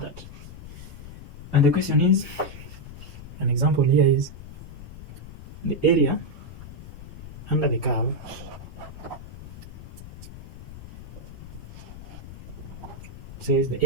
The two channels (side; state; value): left; noise; rumble, 14 dB below the sound